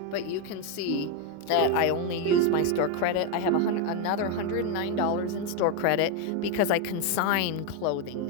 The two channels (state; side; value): different; both; correlation 0.02